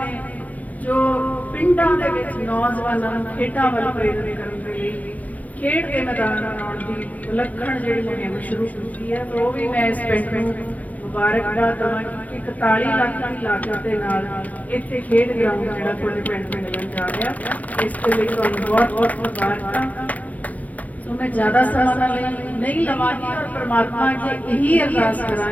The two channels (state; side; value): late; right; 0.076 ms